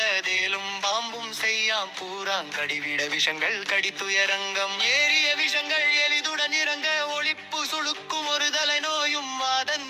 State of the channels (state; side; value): identical; both; correlation 1.00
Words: தேலும் பாம்பும் செய்யாம் பூராங்கடிவிட விஷங்கள் கடித்துயரங்கம் ஏறிய விஷங்கள் எளிதுடன் இறங்க ஒளிப்பு சுழுக்கும் ஒரு தலை நோயும் வாதன்